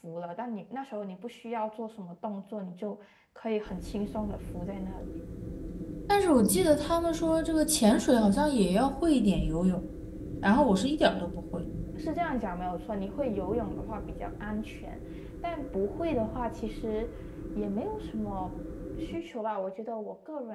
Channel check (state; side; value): identical; both; correlation 1.00